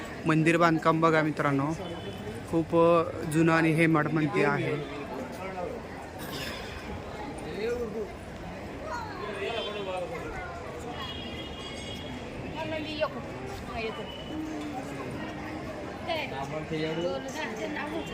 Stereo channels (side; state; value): both; identical; correlation 1.00